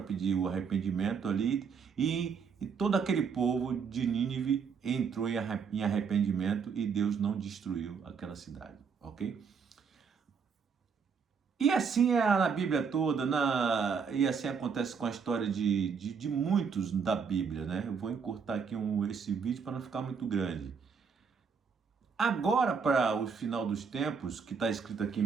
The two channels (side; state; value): left; quieter; 6.0 dB